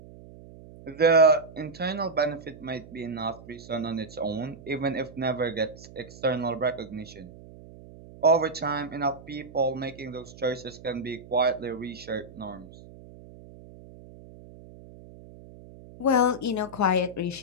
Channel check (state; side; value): noise; right; hum, 19 dB below the sound